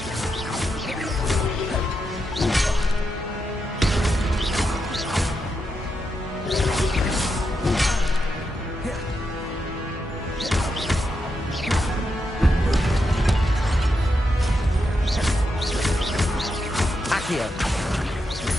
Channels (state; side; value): normal; both; correlation 0.85